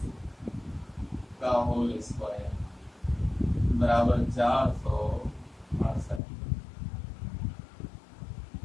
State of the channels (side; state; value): right; drops out; at 6.2 s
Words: का होल स्क्वायर बराबर